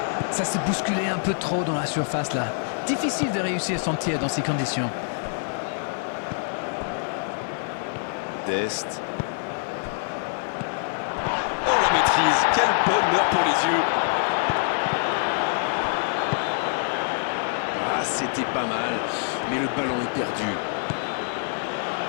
Ça s'est bousculé un peu trop dans la surface là. Difficile de réussir son tir dans ces conditions. Dest. Oh, la maîtrise. Quel bonheur pour les yeux. Ah, c'était pas mal, mais le ballon est perdu.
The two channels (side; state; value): right; silent; digital silence